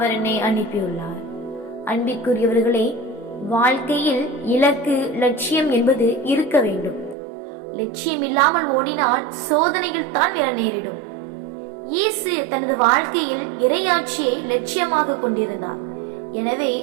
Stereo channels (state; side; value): drops out; left; at 7.2 s